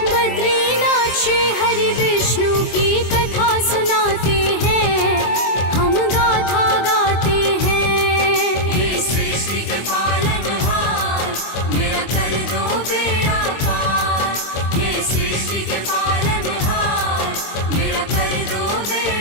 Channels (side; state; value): right; late; 24 ms